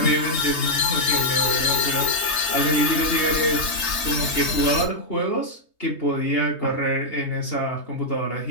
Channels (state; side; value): late; right; 3.2 ms